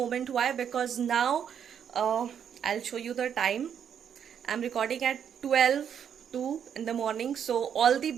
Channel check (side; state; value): left; quieter; 8.3 dB